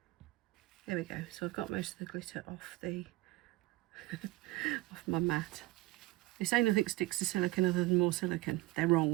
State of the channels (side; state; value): left; quieter; 18.8 dB